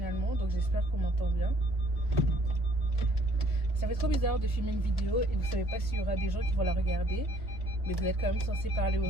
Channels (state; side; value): normal; both; correlation 0.60